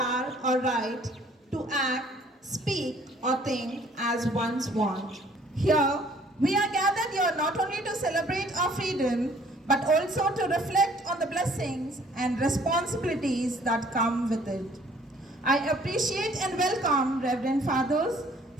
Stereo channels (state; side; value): normal; both; correlation 0.58